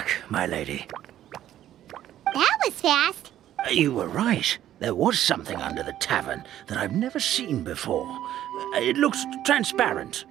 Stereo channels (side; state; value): left; quieter; 12.1 dB